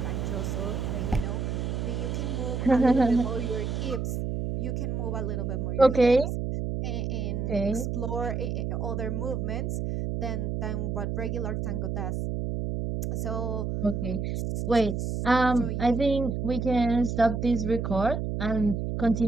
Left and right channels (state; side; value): noise; right; hum, 2 dB below the sound